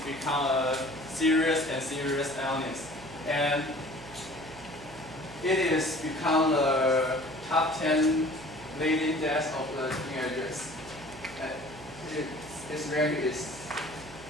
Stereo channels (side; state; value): right; noise; hum, 17 dB below the sound